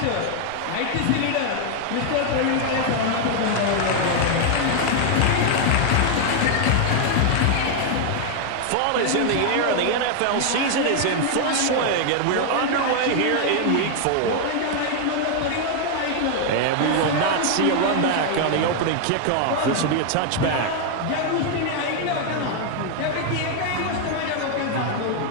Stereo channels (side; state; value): both; different; correlation 0.00